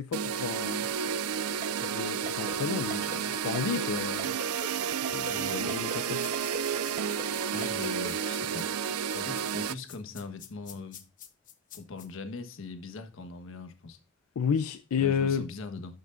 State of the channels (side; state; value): both; normal; correlation 0.00